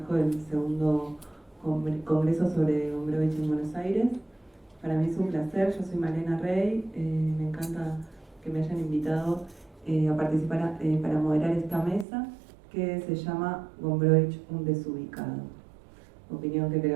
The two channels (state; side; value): drops out; left; at 12.1 s